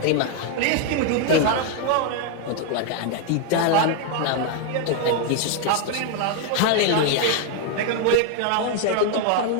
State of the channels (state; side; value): different; both; correlation 0.00